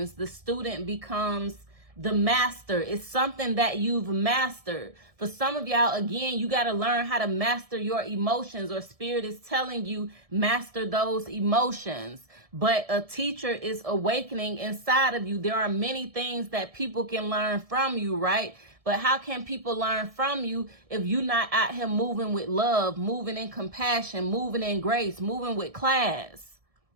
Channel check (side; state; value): left; late; 1.7 ms